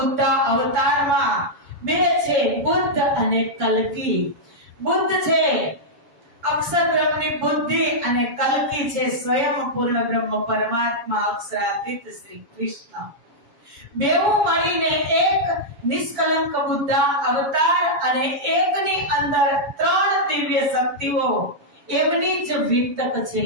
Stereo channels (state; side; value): late; left; 7.3 ms